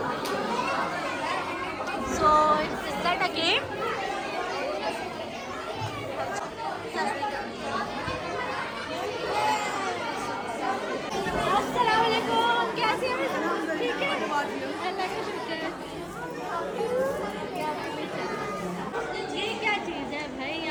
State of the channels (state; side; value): identical; both; correlation 1.00